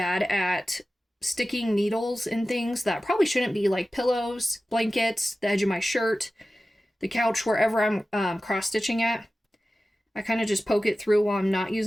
at sticking needles in things that probably shouldn't be, like pillows, blankets, the edge of my shirt, the couch, wherever I'm cross stitching at. I kind of just poke it through while I'm not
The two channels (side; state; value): both; normal; correlation 0.95